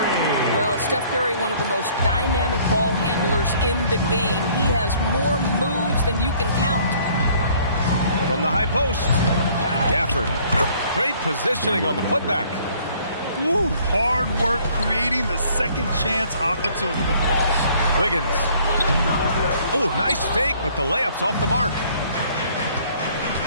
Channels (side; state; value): both; inverted; correlation -0.58